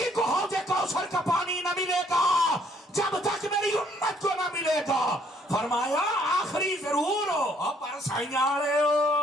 کو حوض کوثر کا پانی نہ ملے گا جب تک میری امت کو نہ ملے گا. فرمایا آخری ضرور ہو, اب پر سائنیاں رہے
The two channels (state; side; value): normal; both; correlation 0.65